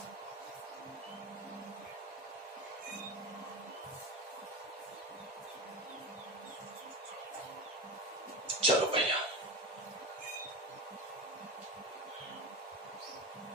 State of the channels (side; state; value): both; normal; correlation 0.24